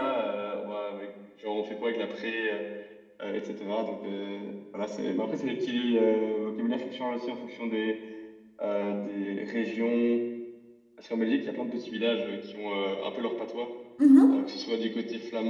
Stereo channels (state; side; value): identical; both; correlation 1.00